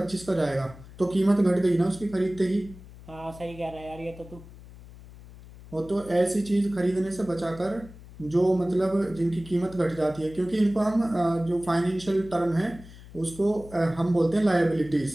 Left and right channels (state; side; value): noise; left; hum, 18 dB below the sound